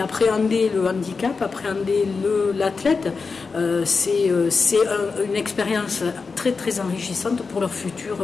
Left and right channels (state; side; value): quieter; right; 4.7 dB